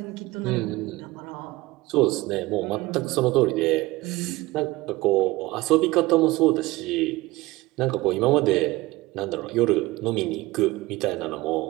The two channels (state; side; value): quieter; left; 20.1 dB